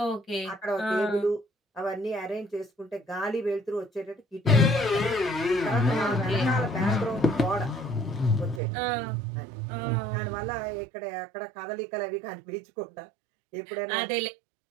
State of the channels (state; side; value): drops out; left; at 8.6 s